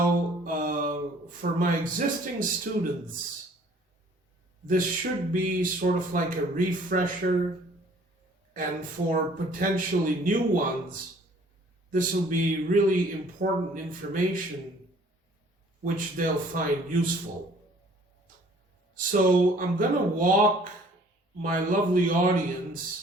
for my existing students, this should be sort of like a refresher, and for potentially new ones, this will be really important information which they'll find useful. So I'm going to walk my lovely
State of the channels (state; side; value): normal; both; correlation 0.55